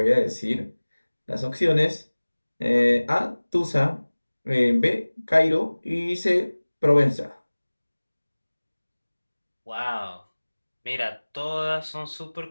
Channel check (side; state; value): both; inverted; correlation -1.00